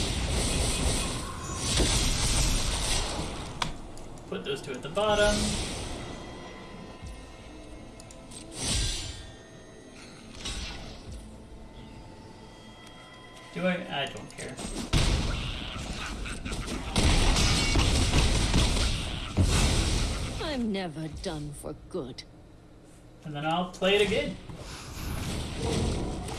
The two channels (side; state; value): both; identical; correlation 1.00